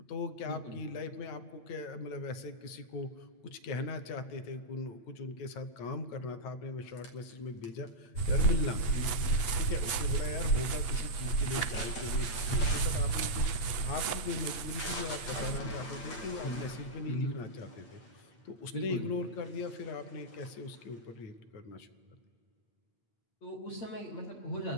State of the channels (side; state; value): right; late; 8.8 ms